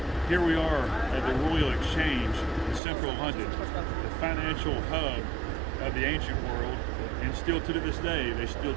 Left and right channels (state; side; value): drops out; left; at 2.8 s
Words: Here we are at the Royal Exchange in central London, the financial hub of the ancient world, and still to this day they still